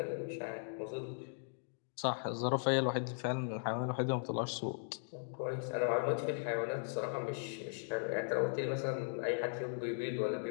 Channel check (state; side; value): silent; right; digital silence